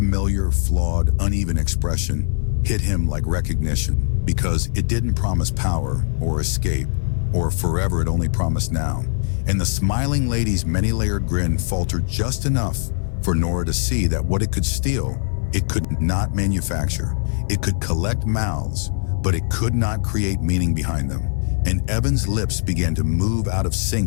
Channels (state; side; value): silent; right; 58 dB below the other